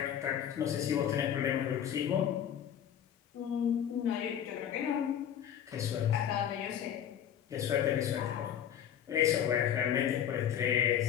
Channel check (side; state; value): right; quieter; 9.6 dB